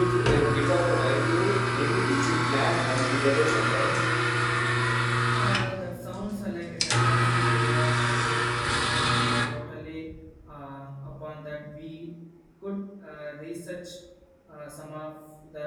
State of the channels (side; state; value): both; identical; correlation 1.00